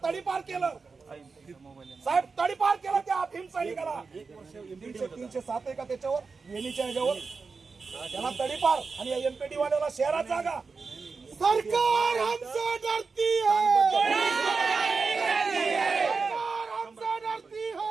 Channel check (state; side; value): quieter; left; 4.6 dB